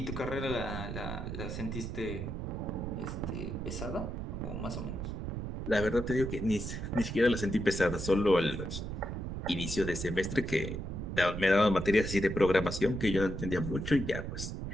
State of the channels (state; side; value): noise; right; rumble, 5 dB below the sound